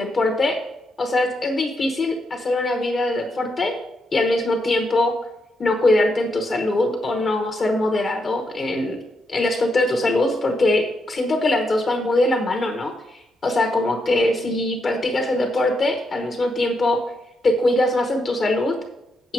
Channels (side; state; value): both; normal; correlation 0.81